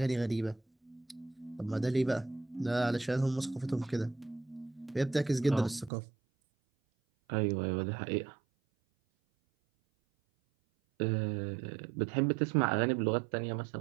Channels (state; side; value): drops out; left; at 5.9 s